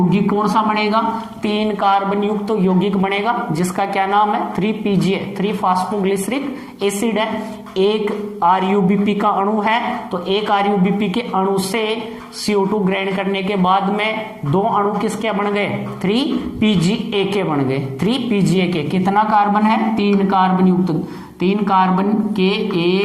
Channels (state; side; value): identical; both; correlation 1.00